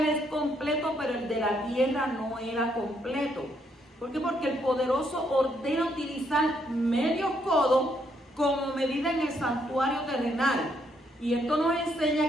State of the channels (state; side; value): normal; both; correlation 0.73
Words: es completo, pero el de la tierra no era completo. ¿Por qué? Porque el poderoso ordena utilizar medio codo como medida en el santuario terrenal. Y esto nos